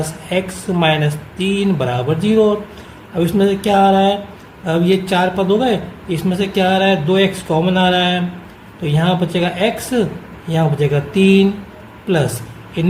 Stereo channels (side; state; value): both; identical; correlation 1.00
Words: x माइनस 3 बराबर 0। अब इसमें से क्या आ रहा है? अब ये 4 पद हो गए, इसमें से क्या आ रहा है? 2x कॉमन आ रहा है, तो यहाँ बचेगा x, यहाँ बचेगा 3 प्लस